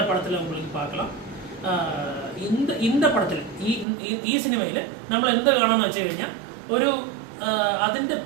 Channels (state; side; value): drops out; left; at 3.9 s